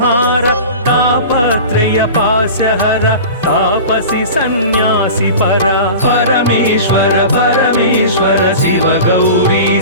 तापत्रय पासहर तापसी सन्यासी परा परमेश्वर परमेश्वर शिव गौरी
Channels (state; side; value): inverted; both; correlation -0.35